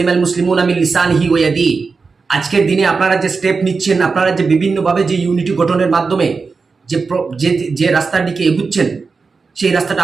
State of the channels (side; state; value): left; quieter; 4.6 dB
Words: মুসলিমুনা মিন লিসানিহি ওয়া ইয়াদিহি? আজকের দিনে আপনারা যে স্টেপ নিচ্ছেন, আপনারা যে বিভিন্নভাবে যে ইউনিটি গঠনের মাধ্যমে যে রাস্তার দিকে এগুচ্ছেন, সেই রাস্তাটা